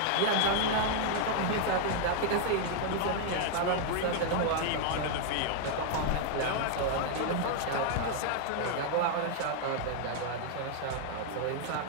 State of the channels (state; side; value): different; both; correlation 0.00